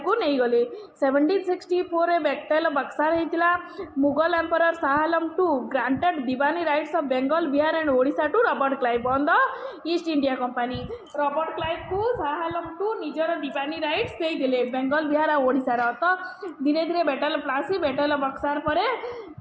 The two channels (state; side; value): identical; both; correlation 1.00